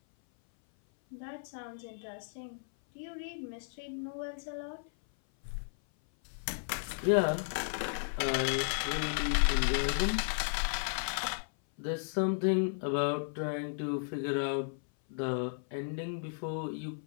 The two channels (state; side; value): silent; right; 55 dB below the other